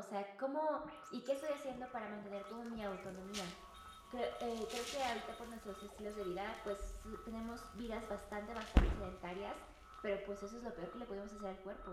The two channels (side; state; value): both; identical; correlation 1.00